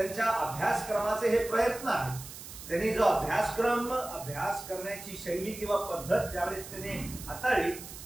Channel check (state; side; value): noise; right; hiss, 13 dB below the sound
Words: अभ्यासक्रमाचे हे प्रयत्न आहेत. त्यांनी जो अभ्यास करण्याची शैली किंवा पद्धत ज्यावेळेस त्यांनी हाताळली,